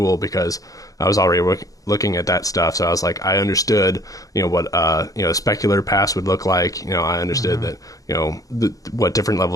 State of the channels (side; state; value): right; late; 0.17 ms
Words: because I was already looking at that stuff. So I was like, I understood what a specular pass would look like. I understood that what different